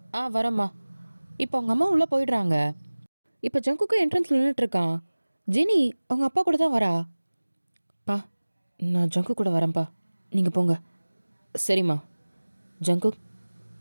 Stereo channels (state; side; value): inverted; both; correlation -1.00